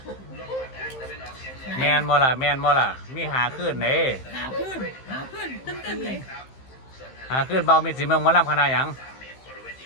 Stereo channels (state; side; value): late; right; 15 ms